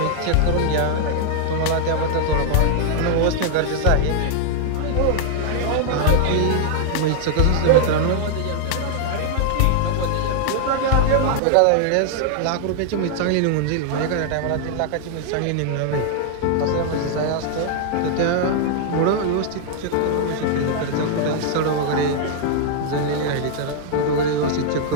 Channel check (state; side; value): different; both; correlation 0.00